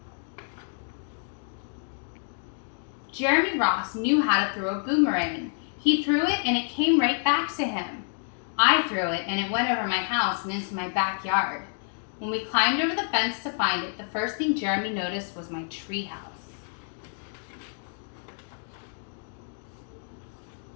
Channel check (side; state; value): right; silent; 59 dB below the other